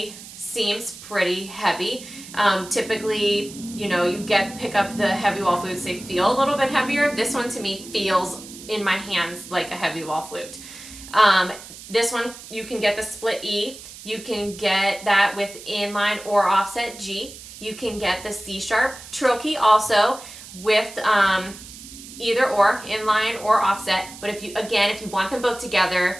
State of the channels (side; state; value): right; noise; hiss, 15 dB below the sound